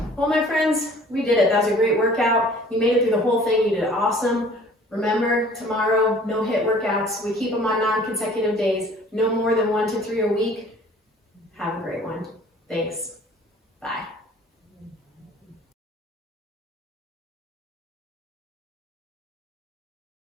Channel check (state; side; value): normal; both; correlation 0.51